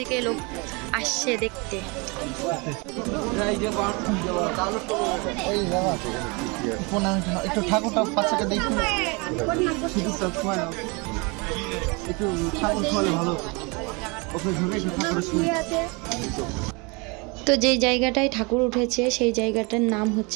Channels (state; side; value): quieter; left; 29.0 dB